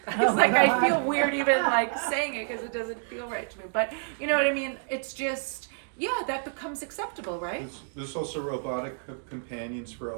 It's like I feel weird even like saying it because it doesn't feel right to me. But you know what I mean? It's just, yeah, that becomes acceptable, right? There's also robotic companions for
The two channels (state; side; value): silent; left; digital silence